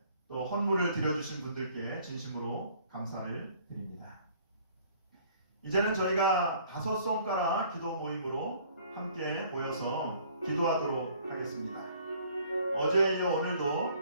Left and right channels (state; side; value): inverted; both; correlation -0.57